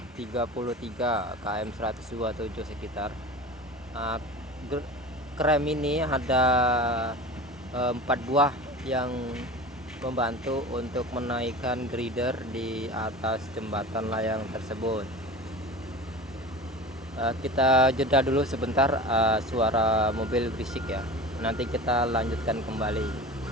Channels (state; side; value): normal; both; correlation 0.34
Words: KM 127 sekitar. Krem ini ada 4 buah yang membantu untuk menaikkan grider di atas jembatan layang tersebut. Kita jeda dulu sebentar, suara mobil berisik ya. Nanti kita lanjutkan kembali.